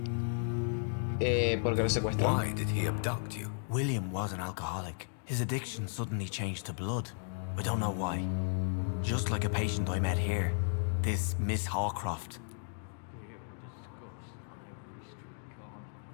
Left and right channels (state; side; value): silent; right; digital silence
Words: Porque lo secuestró. Why did he abduct you? William was an alcoholic. His addiction suddenly changed to blood. I don't know why. Just like a patient I met here. This Miss Hawcroft.